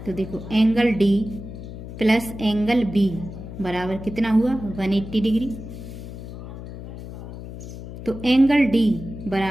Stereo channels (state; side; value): noise; left; hum, 11 dB below the sound